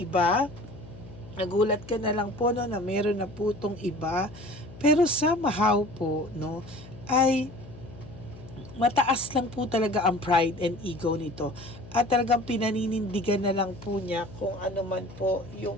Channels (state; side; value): noise; left; hum, 17 dB below the sound